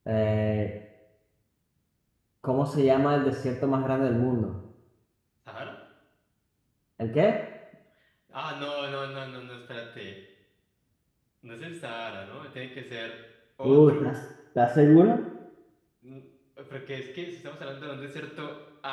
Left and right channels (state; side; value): identical; both; correlation 1.00